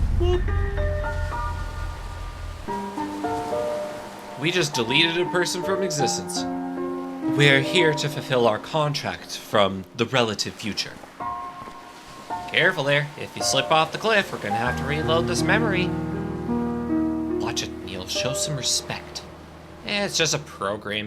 We just deleted a person from existence. We're here to fulfill our contract from the relative future. Careful there. If you slip off the cliff, we're gonna have to reload this memory. Watch it, Neil. Show some respect. It's just a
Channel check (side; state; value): both; identical; correlation 1.00